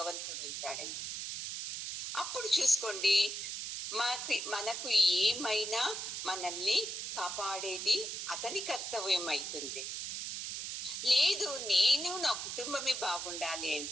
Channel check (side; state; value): right; noise; hiss, 5 dB below the sound